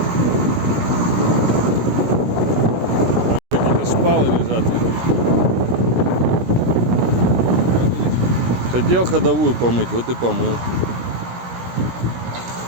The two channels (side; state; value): left; late; 17 ms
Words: Какие-то шпалы лежат. Хотел ходовую помыть, вот и помыл.